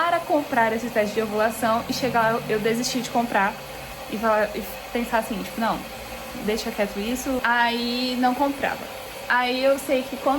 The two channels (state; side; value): identical; both; correlation 1.00